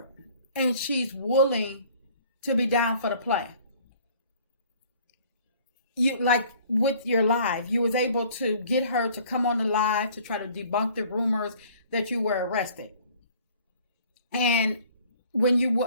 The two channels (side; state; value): both; inverted; correlation -0.54